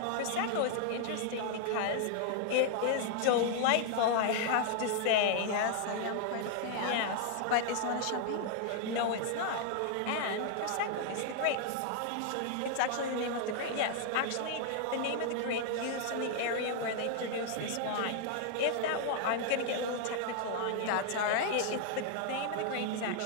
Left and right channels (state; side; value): different; both; correlation 0.00